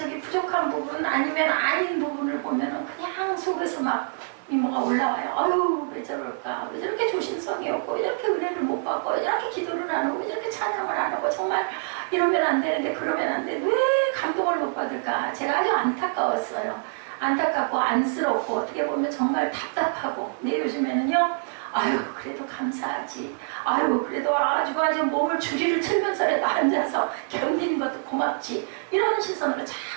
부족한 부분 아니면 아닌 부분을 보면은 그냥 속에서 막 미모가 올라와요. 아유, 왜 저럴까? 왜 저렇게 조심성이 없고, 왜 저렇게 은혜를 못 받고, 왜 저렇게 기도를 안 하고, 왜 저렇게 찬양을 안 하고, 정말 이러면 안 되는데, 그러면 안 돼. 왜 감동을 못 받을까? 제가 아주 안타까웠어요. 안타깝고, 안쓰럽고, 어떻게 보면 정말 답답하고. 근데 요즘에는요, 아유, 그래도 감사하지. 아유, 그래도 아주 몸을 주리를 틀면서라도 앉아서 견디는 것도 고맙지. 이런 시선으로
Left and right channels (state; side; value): silent; left; digital silence